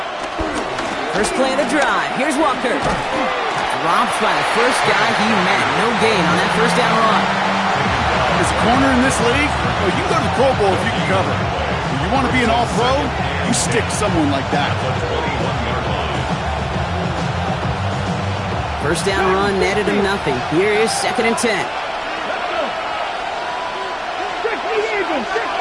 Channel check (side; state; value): both; identical; correlation 1.00